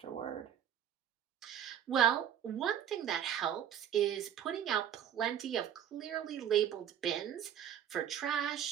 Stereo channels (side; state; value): left; quieter; 9.7 dB